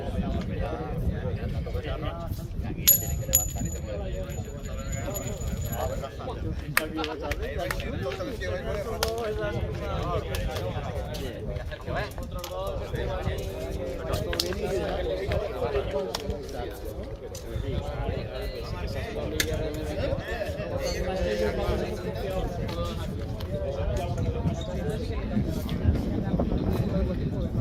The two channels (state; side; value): identical; both; correlation 1.00